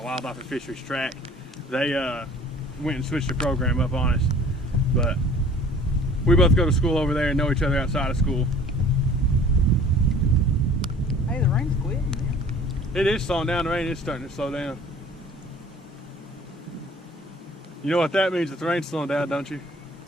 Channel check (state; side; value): normal; both; correlation 0.49